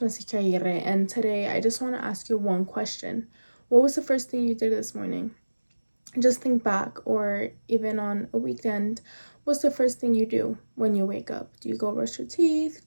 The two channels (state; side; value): inverted; both; correlation -1.00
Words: Aguirre, and today I just want to ask you one question. What was the first thing you did this morning? Just think back, or even on a weekend, what's the first thing you do when you wake up? Do you go brush your teeth?